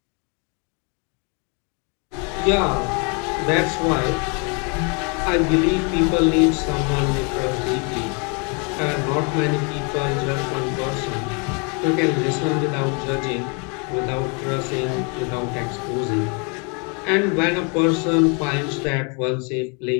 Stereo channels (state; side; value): quieter; right; 34.3 dB